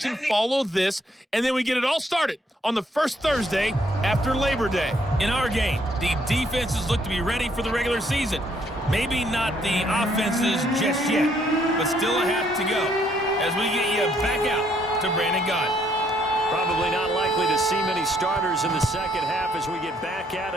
follow this, and then we get it all started on the first Thursday after Labor Day. In our game, the defenses look to be ready for the regular season. Maybe not the offenses just yet, but still a half to go as we get you back out to Brandon Gaudin. Probably not likely to see many starters in the second half as we get back at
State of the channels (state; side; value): normal; both; correlation 0.69